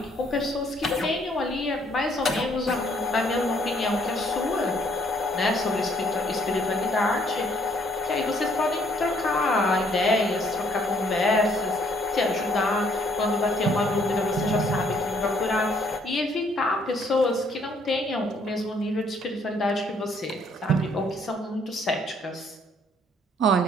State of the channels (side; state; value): both; normal; correlation 0.65